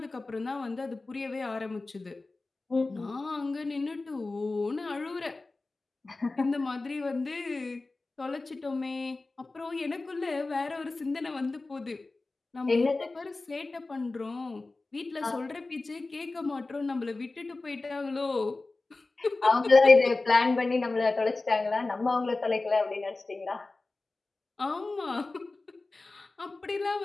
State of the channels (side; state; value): right; quieter; 3.4 dB